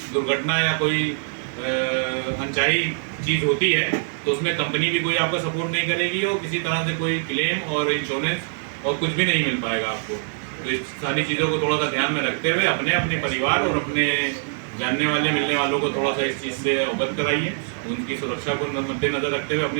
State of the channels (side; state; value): left; silent; 62 dB below the other